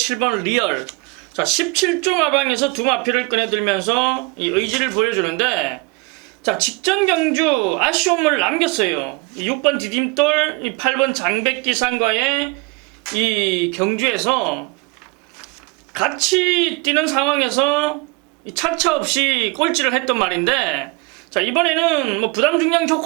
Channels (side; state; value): left; quieter; 26.6 dB